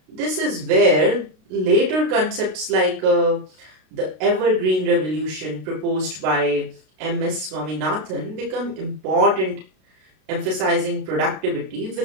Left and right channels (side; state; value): left; late; 32 ms